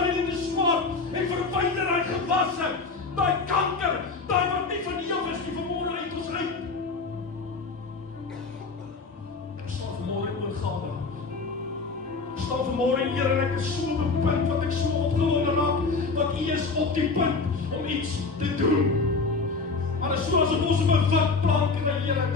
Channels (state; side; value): quieter; right; 4.2 dB